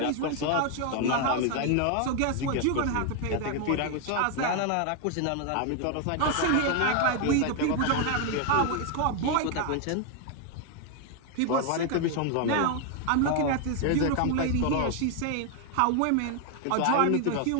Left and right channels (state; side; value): different; both; correlation 0.01